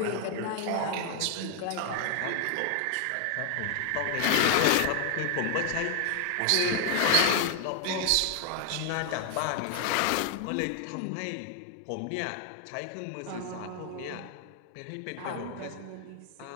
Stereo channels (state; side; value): different; both; correlation 0.00